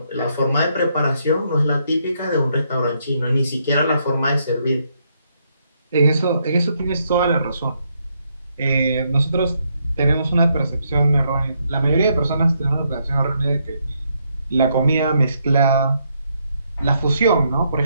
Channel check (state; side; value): inverted; both; correlation -0.76